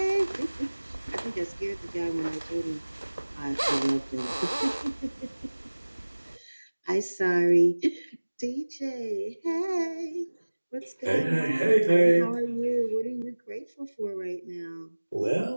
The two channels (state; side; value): inverted; both; correlation -1.00